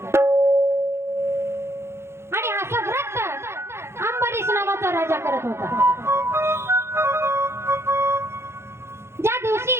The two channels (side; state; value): left; late; 0.12 ms